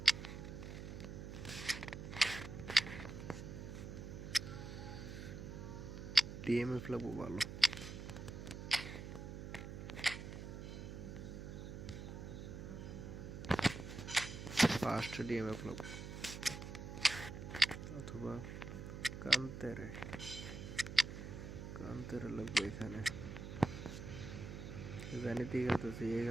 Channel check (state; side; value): noise; right; hum, 8 dB below the sound